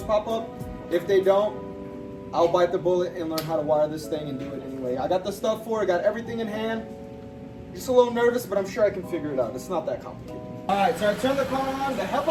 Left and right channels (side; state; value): both; identical; correlation 1.00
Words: pop up. If they don't, I'll bite the bullet and learn how to wire this thing and do it anyway. I got the stuff for it, got everything in hand. Just a little nervous, but I'm sure I can figure it out. It's not that complicated. All right, so I turned the car on. The